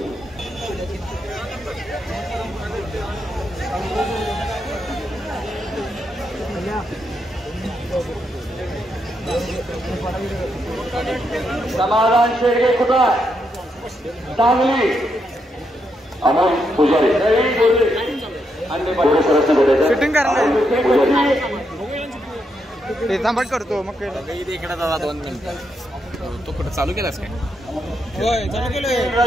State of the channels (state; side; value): normal; both; correlation 0.80